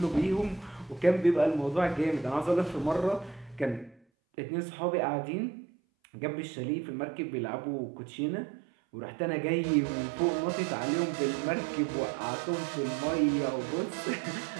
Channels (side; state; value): left; drops out; at 4.0 s